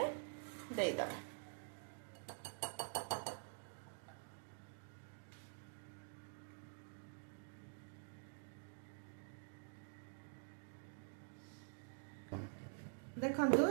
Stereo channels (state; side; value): silent; left; digital silence